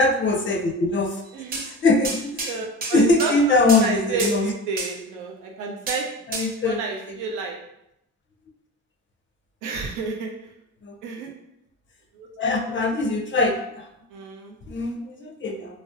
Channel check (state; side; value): normal; both; correlation 0.31